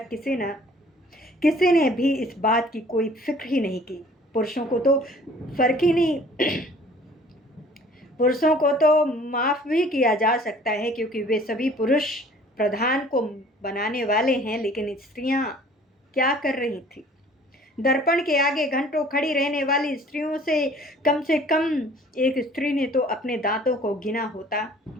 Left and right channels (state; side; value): normal; both; correlation 0.52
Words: किसी ने भी इस बात की कोई फिक्र ही नहीं की। पुरुषों को तो फर्क ही नहीं पुरुषों को तो माफ भी किया जा सकता है, क्योंकि वे सभी पुरुष प्रधान को बनाने वाले हैं। लेकिन स्त्रियां क्या कर रही थी? दर्पण के आगे घंटों खड़ी रहने वाली स्त्रियों से कम एक स्त्री ने तो अपने दांतों को गिना होता,